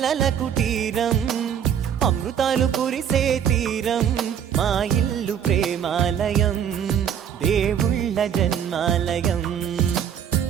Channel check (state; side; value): quieter; left; 8.7 dB